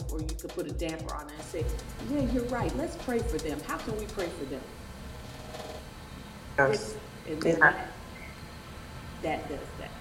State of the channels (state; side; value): identical; both; correlation 1.00